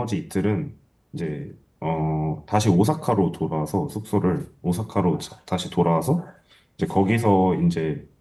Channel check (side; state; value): both; identical; correlation 1.00